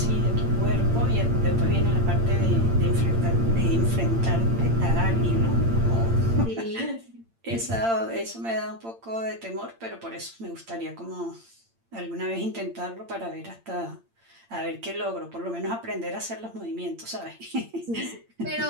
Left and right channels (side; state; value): left; late; 8.8 ms